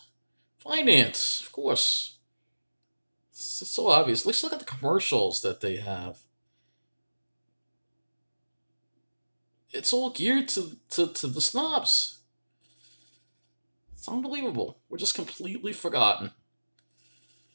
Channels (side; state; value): both; inverted; correlation -1.00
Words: Finance, of course. It's so obvious. Let's look at the commercials that they have. It's all geared to the snobs. It's unbelievable. We're just completely forgotten.